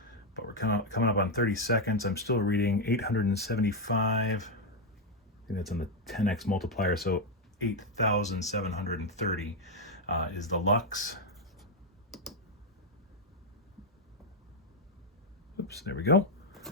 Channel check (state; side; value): normal; both; correlation 0.03